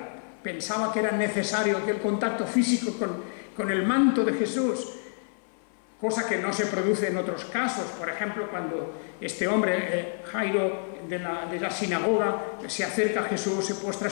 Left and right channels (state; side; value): silent; right; 55 dB below the other